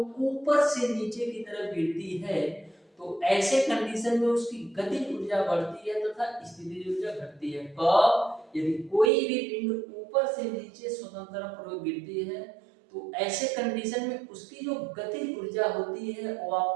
ऊपर से नीचे की तरफ गिरती है तो ऐसे कंडीशन में उसकी गतिज ऊर्जा बढ़ती है तथा स्थितिज ऊर्जा घटती है। कब? यदि कोई भी पिंड ऊपर से नीचे स्वतंत्रता पूर्वक गिरती है तो ऐसे कंडीशन में उसकी जो गतिज ऊर्जा होती है वो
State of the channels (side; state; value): left; drops out; at 9.1 s